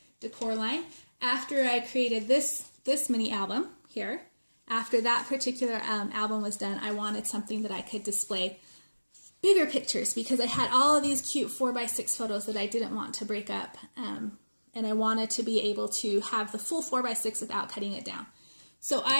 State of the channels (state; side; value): inverted; both; correlation -1.00